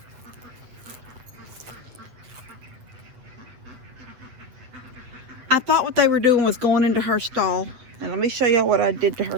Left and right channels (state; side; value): late; left; 8.2 ms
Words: I thought what they were doing was going into her stall. And let me show y'all what I did to